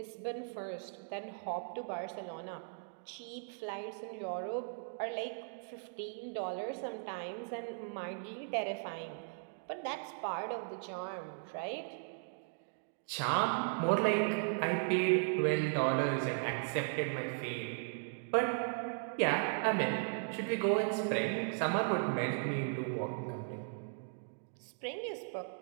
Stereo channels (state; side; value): silent; left; digital silence